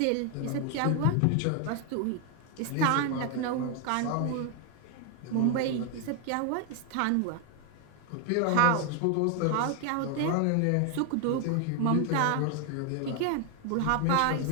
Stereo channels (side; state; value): both; different; correlation 0.01